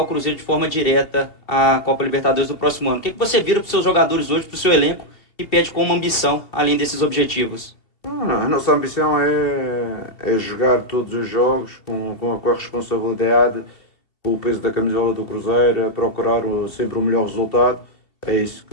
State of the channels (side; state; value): right; late; 2.8 ms